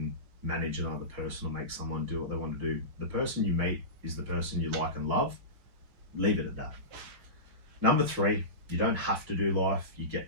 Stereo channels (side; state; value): left; late; 5.6 ms